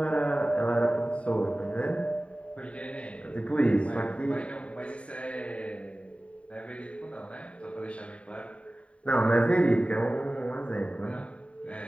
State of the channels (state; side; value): late; right; 0.063 ms